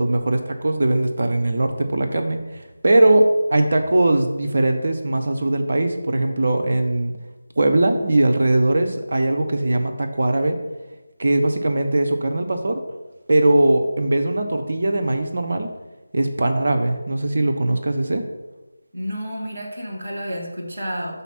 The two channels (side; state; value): both; inverted; correlation -0.96